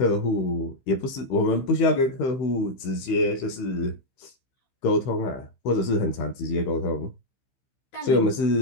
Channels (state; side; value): late; right; 15 ms